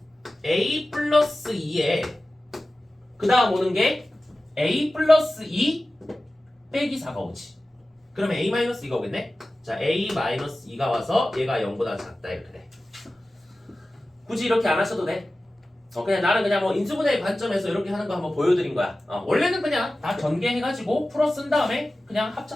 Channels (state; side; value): normal; both; correlation 0.96